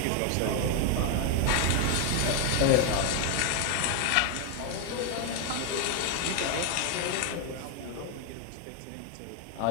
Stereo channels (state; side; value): different; both; correlation 0.01